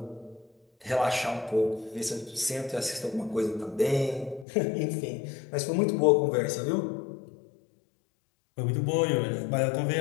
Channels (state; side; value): drops out; right; at 4.5 s